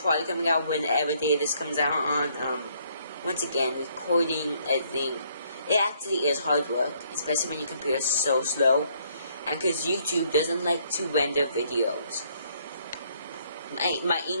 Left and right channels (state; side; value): inverted; both; correlation -0.67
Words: coming out whenever day this comes out on. Once again, recording, editing, it actually is hard work, especially when your computer is so slow, and because YouTube doesn't like to render videos. My